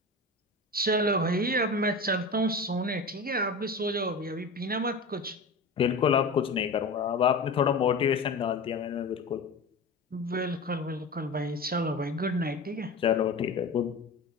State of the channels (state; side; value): quieter; right; 3.1 dB